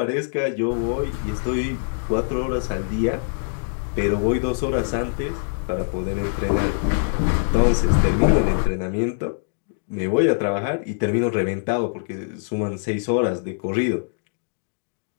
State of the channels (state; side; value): silent; right; digital silence